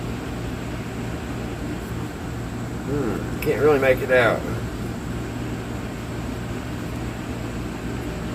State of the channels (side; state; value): both; identical; correlation 1.00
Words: Can't really make it out.